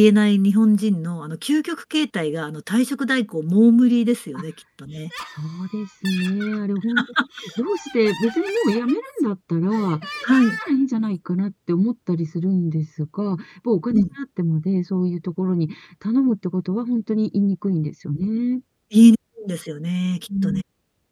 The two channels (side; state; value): both; identical; correlation 1.00